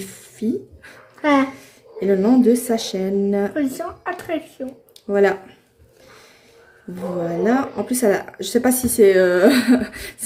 Ah, Et le nom de sa chaîne. position attraction. Voilà. Voilà. En plus, je sais pas si c'est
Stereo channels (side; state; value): both; identical; correlation 1.00